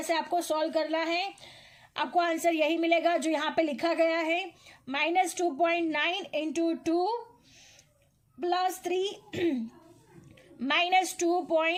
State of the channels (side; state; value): both; identical; correlation 1.00